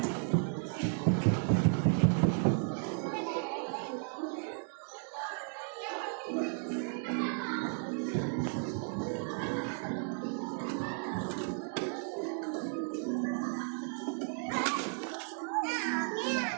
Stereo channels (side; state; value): left; silent; 55 dB below the other